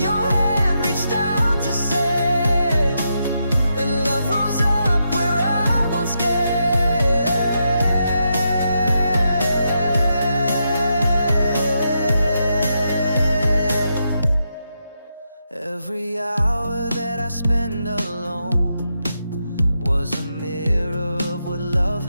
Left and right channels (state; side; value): inverted; both; correlation -0.83